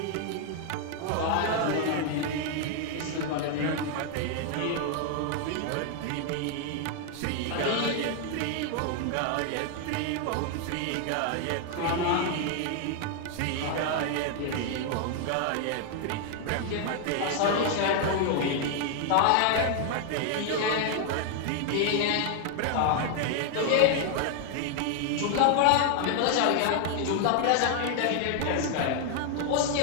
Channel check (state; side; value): different; both; correlation 0.00